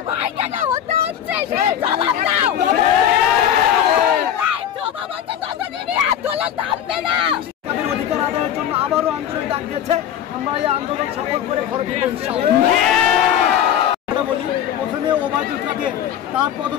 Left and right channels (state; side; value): quieter; right; 10.1 dB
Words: ভাই কেন হতে হচ্ছে, সেই জবাব দাও। জবাব আছে ততদিনই আন্দোলন থামবে না। তাদের অধিকার আদায়ের জন্য আবারও আন্দোলন ডাক দিয়েছে। আমরা এই আন্দোলন সফল করে ঘরে ফিরব ইনশাআল্লাহ। বলি প্রথমে ওবায়দুল কাদের, তার